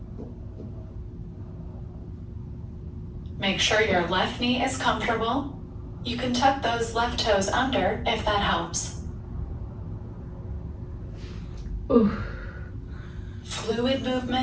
Make sure your left knee is comfortable. You can tuck those left toes under if that helps. Ooh. Fluid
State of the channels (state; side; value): identical; both; correlation 1.00